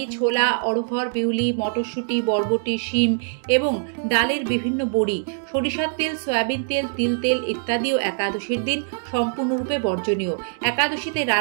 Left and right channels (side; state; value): left; silent; 63 dB below the other